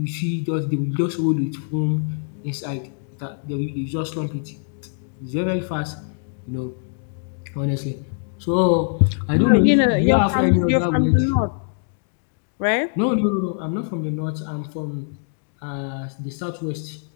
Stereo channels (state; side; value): silent; right; digital silence